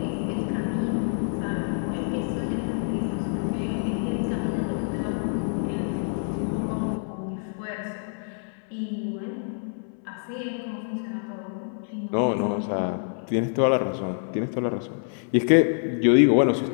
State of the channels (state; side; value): silent; right; 61 dB below the other